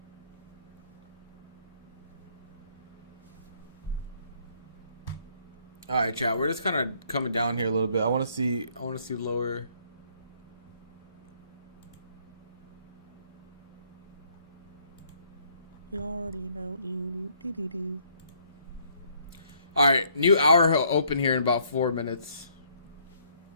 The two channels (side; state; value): both; inverted; correlation -0.66